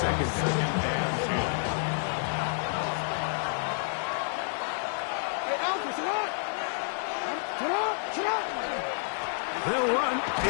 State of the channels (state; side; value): silent; right; digital silence